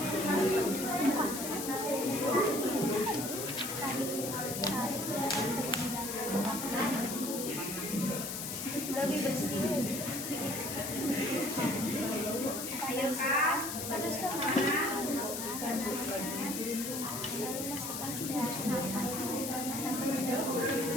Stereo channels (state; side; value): noise; left; hiss, 5 dB below the sound